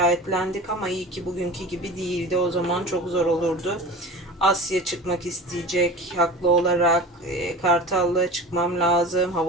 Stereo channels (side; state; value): both; normal; correlation 0.35